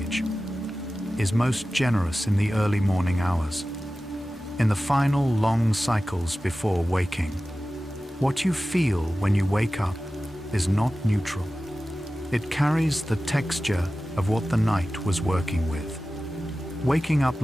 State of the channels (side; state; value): both; normal; correlation 0.95